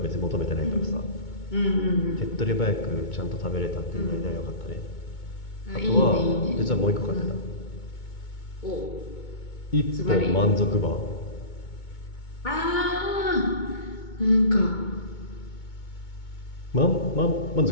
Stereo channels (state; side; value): late; right; 2.2 ms